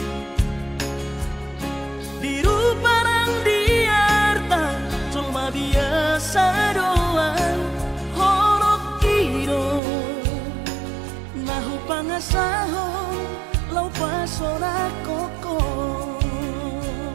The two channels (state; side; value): drops out; left; at 9.8 s